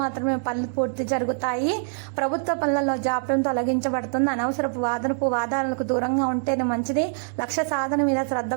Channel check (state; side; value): silent; left; digital silence